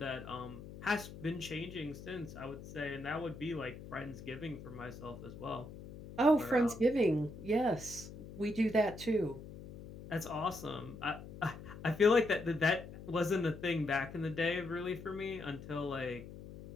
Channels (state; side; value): noise; left; hum, 13 dB below the sound